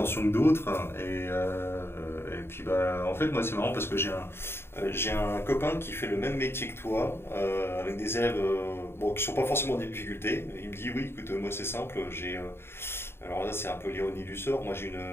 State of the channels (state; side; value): late; right; 0.11 ms